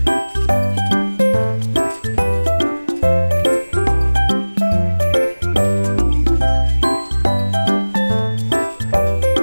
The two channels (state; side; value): inverted; both; correlation -1.00